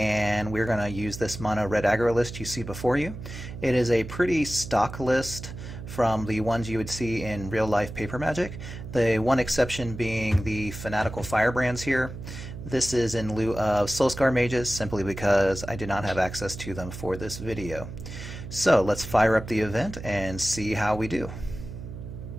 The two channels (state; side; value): noise; right; hum, 10 dB below the sound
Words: we're going to use this mono red aggro list you see before you. It is a pretty stock list from the ones you would see in real life paper magic. The one exception being the fanatical firebrands here. This is in lieu of Soulscar mages simply because I did not have access to them for this video. So let's fire up the event and see how we do.